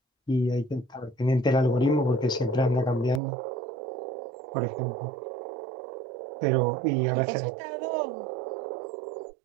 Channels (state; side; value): drops out; left; at 3.2 s